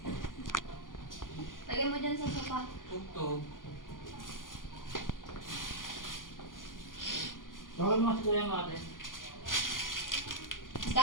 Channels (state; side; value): late; right; 0.90 ms